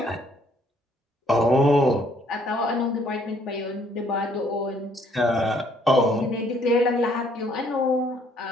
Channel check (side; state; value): both; normal; correlation 0.64